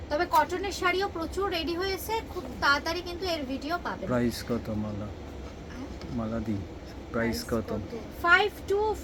তবে কটনের শাড়িও প্রচুর রেডি হয়েছে, খুব তাড়াতাড়ি কিন্তু এর ভিডিও পাবেন। প্রাইস কত মালা? মালা দি প্রাইস কত?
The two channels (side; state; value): both; identical; correlation 1.00